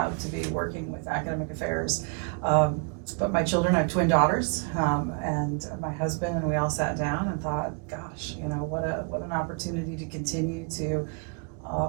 to be working with academic affairs. But my children, I have twin daughters, and my husband, and we all sat down and thought, gosh, what an opportunity to continue to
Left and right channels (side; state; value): left; quieter; 38.3 dB